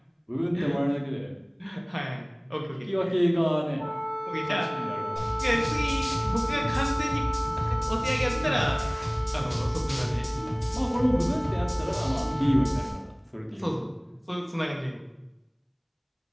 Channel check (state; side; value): identical; both; correlation 1.00